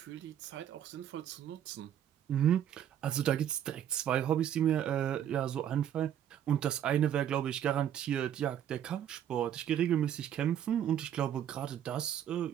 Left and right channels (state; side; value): quieter; left; 10.1 dB